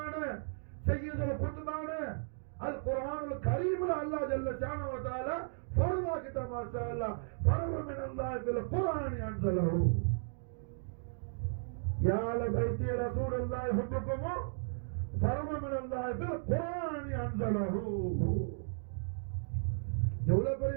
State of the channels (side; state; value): left; silent; digital silence